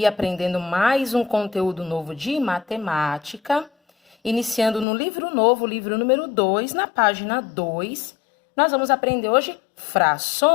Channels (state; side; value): drops out; right; at 4.9 s